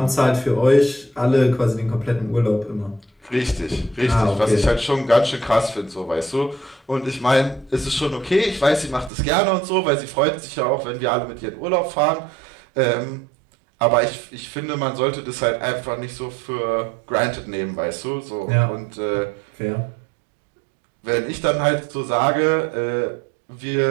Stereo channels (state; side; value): drops out; left; at 9.1 s